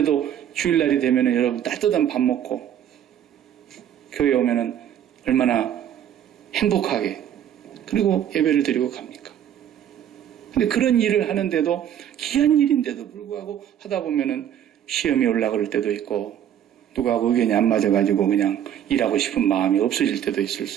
주일날이 되면 여러분 따뜻한 밥 먹고 교회에 오면 얼마나 행복하게 그리고 예배를 드리고 갑니까? 근데 그런 일을 하는데도 귀한 일인데도 불구하고 하다 보면은 시험이 올라갈 때도 있고 누구하고 의견이 안 맞아가지고 그냥 일하고 싶은 마음이 없어질 때도 있을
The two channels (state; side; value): quieter; left; 10.1 dB